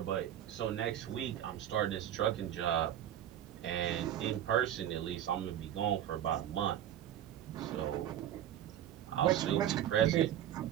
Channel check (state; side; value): quieter; left; 11.1 dB